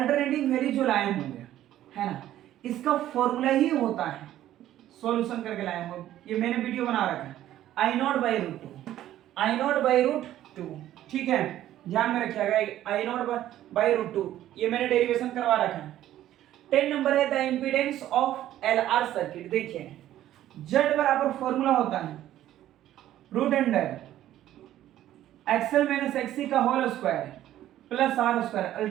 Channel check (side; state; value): left; quieter; 12.9 dB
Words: वैल्यू जो लाए होंगे, है ना, इसका फॉर्मूला ही होता है, सॉल्यूशन करके लाए होंगे, ये मैंने वीडियो बना रखा है, I not by root two. ठीक है, ध्यान में रखिएगा, I not by root two, ये मैंने डेरिवेशन करवा रखा है। 10 नंबर है the impedance of LR circuit. देखिए जेड बराबर फॉर्मूला होता है root under XL minus XC का whole square plus R square,